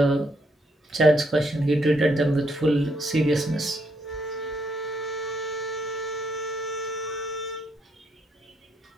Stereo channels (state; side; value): normal; both; correlation 0.75